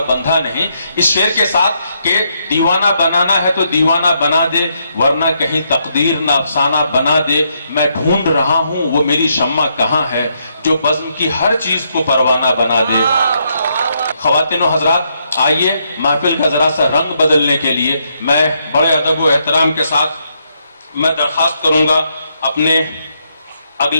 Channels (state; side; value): inverted; both; correlation -0.77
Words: बंधा नहीं, इस शेर के साथ कि दीवाना बनाना है तो दीवाना बना दे, वरना कहीं तकदीर ना अफसाना बना दे। मैं ढूंढ रहा हूं वो मेरी शम्मा कहां है, जो बज़्म की हर चीज को परवाना बना दे। ख्वातीन व हज़रात, आइए महफिल का जरा सा रंग बदलने के लिए मैं बड़े अदब व एहतराम के साथ मैं दरख्वास्त करूंगा अपने